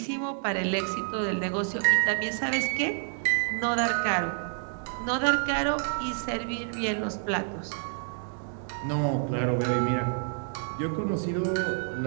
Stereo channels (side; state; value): left; silent; 59 dB below the other